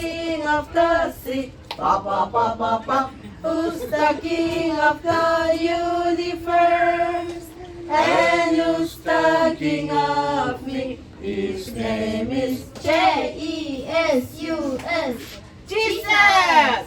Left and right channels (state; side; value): identical; both; correlation 1.00